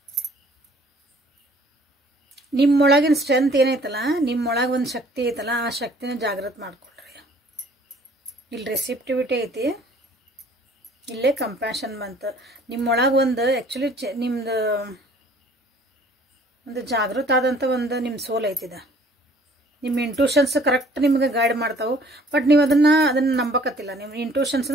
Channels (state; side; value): normal; both; correlation 0.56